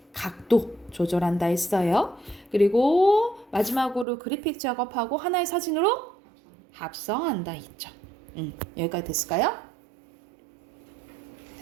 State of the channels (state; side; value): drops out; left; at 4.0 s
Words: 각도 조절한다 했어요. 그리고 마지막으로 그래픽 작업하고 하나의 사진으로 합성한다 했죠. 여기까지 됐을까요?